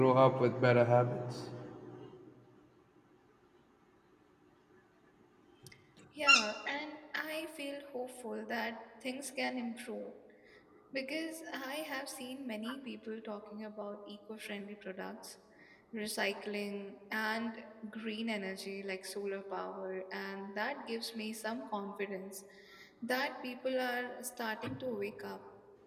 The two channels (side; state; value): both; identical; correlation 1.00